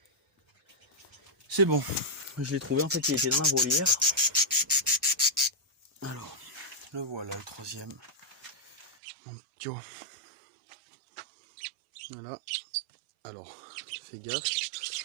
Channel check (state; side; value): drops out; left; at 8.9 s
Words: C'est bon, je l'ai trouvé, en fait il était dans la volière. Alors, le voilà, le troisième. Tu vois. Voilà. Alors, fais gaffe.